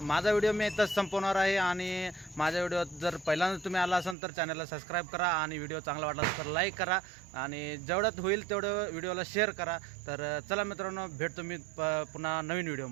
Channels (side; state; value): left; drops out; at 4.2 s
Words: माझा व्हिडिओ मी इथंच संपवणार आहे आणि माझ्या व्हिडिओ जर पहिल्यांदा तुम्ही आला असाल तर चॅनलला सबस्क्राईब करा आणि व्हिडिओ चांगला वाटला तर लाईक करा आणि जेवढ्यात होईल तेवढं व्हिडिओला शेअर करा. तर चला मित्रांनो भेटतो मी पुन्हा नवीन